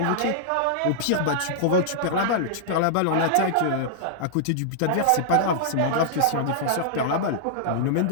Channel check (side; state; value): both; different; correlation -0.02